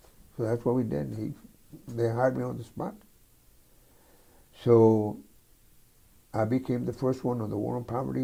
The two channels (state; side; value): identical; both; correlation 1.00